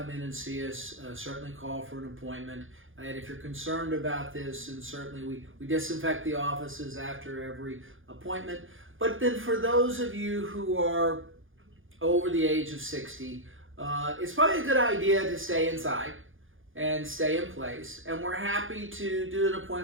in and see us, certainly call for an appointment. And if you're concerned about this, and certainly we disinfect the offices after every appointment. But then for those of you who are over the age of 60, it's probably a good idea to stay inside and stay in place. And we're happy to do an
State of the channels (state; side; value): late; left; 0.58 ms